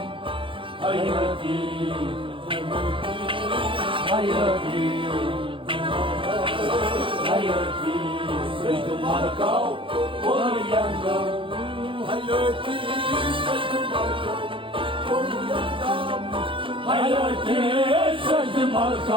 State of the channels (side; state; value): left; late; 0.25 ms